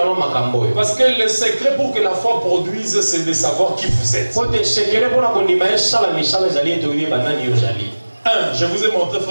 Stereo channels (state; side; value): inverted; both; correlation -1.00